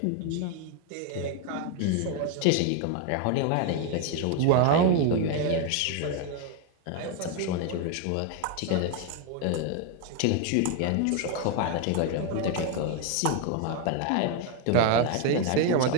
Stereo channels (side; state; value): both; different; correlation 0.01